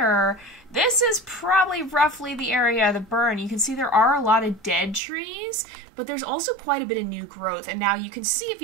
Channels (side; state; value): left; drops out; at 5.0 s